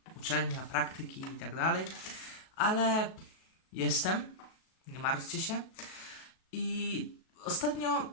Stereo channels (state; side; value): late; right; 37 ms